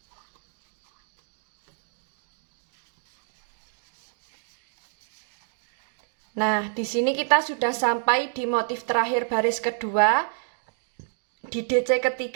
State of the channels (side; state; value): left; silent; digital silence